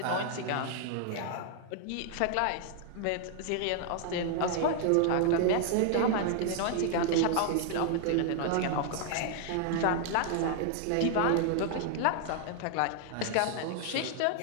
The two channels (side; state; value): both; different; correlation 0.00